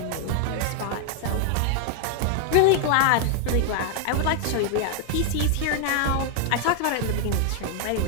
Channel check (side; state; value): both; different; correlation 0.00